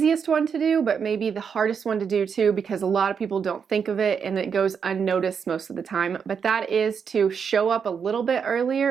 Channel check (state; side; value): quieter; left; 6.6 dB